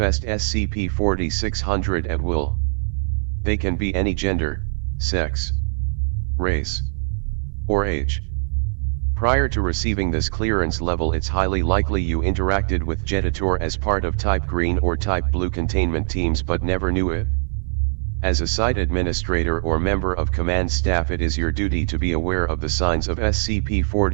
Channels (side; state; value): left; silent; 64 dB below the other